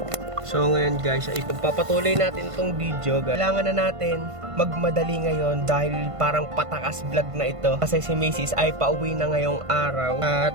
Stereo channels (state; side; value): late; left; 1.5 ms